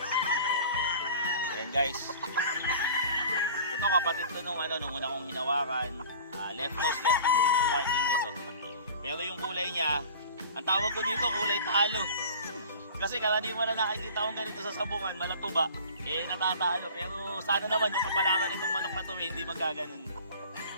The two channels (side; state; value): both; inverted; correlation -0.42